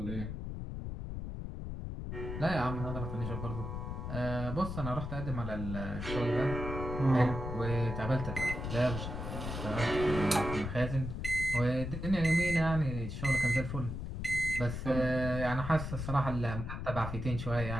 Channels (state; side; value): noise; left; rumble, 5 dB below the sound